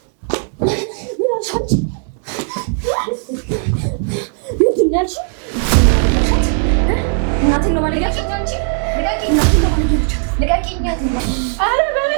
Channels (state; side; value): silent; left; 56 dB below the other